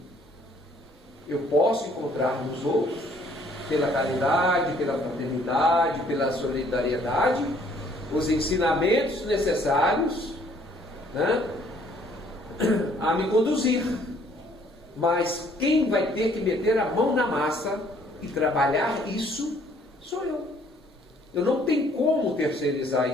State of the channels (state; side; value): normal; both; correlation 0.61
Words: Eu posso encontrar nos outros, pela caridade, pela fraternidade, pela solidariedade, os ensinamentos necessários, né, a me conduzir. Mas quem vai ter que meter a mão na massa e trabalhar isso sou eu. Eu não tenho como